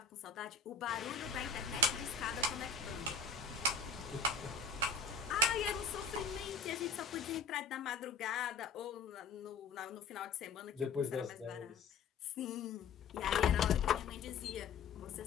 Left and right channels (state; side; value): quieter; right; 4.7 dB